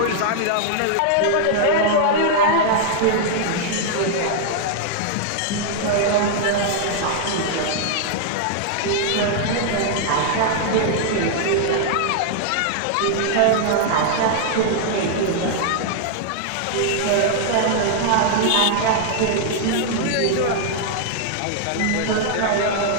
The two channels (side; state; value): both; different; correlation -0.01